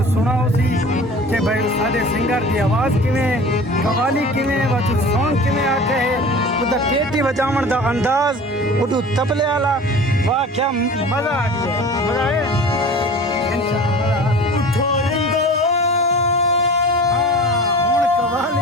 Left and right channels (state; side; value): normal; both; correlation 0.39